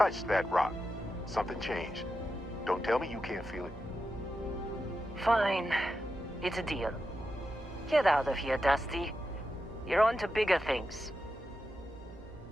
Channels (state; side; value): normal; both; correlation 0.89